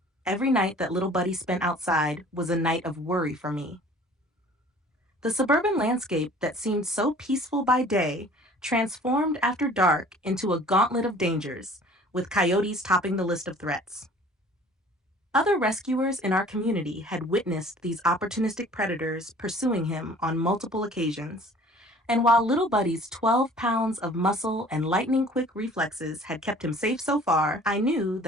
Every night that Little Buddy spent outside was a night of worry for me. The suburban landscape that seemed so peaceful by day transformed after dark into a gauntlet of dangers, with coyotes topping the list of threats. Other rescuers in our community had witnessed these opportunistic predators pursuing him on multiple occasions, and while Little Buddy's 12 pounds of muscle and lightning-quick reflexes had kept him safe so far, I knew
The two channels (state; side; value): normal; both; correlation 0.50